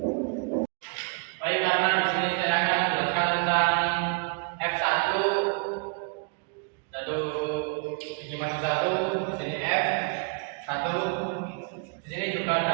Baik, karena di sini saya akan menjelaskan tentang F1, biji maju 1, di sini F1. Di sini juga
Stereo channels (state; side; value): quieter; left; 38.2 dB